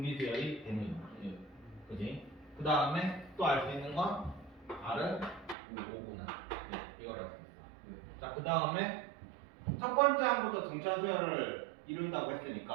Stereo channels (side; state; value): left; drops out; at 5.6 s